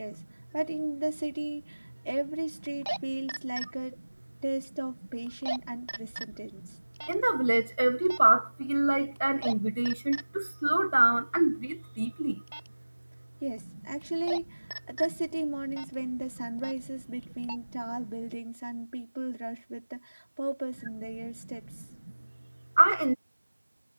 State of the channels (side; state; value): both; inverted; correlation -1.00